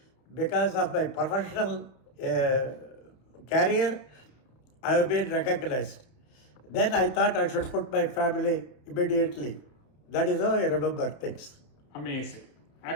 Because of my professional career, I have been recognized. Then I thought I should put my family immediately. That is how I remember things. amazing.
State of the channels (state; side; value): late; right; 30 ms